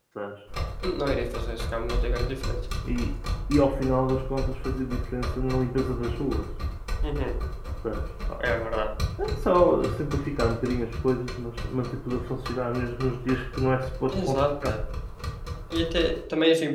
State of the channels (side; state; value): both; identical; correlation 1.00